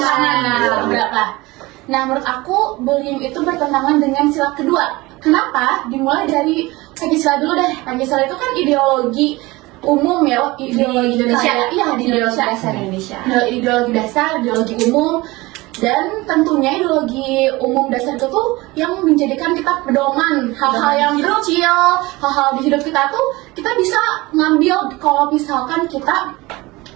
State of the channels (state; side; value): quieter; left; 21.4 dB